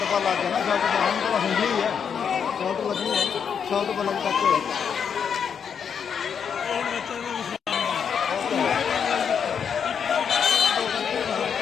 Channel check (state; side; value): quieter; right; 7.2 dB